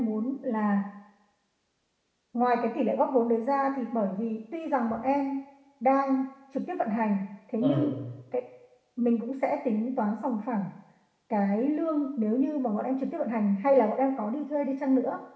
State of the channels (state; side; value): identical; both; correlation 1.00